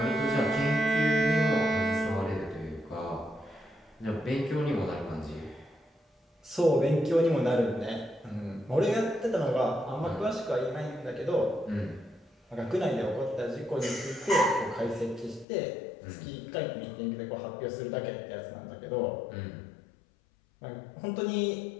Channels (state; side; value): drops out; right; at 15.5 s